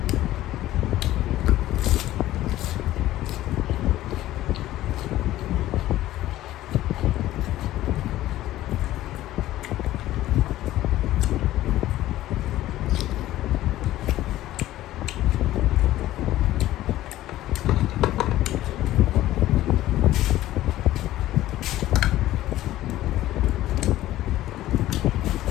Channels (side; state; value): right; quieter; 14.8 dB